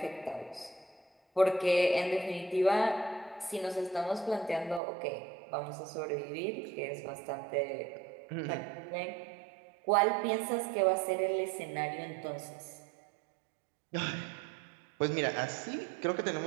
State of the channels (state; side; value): drops out; left; at 4.8 s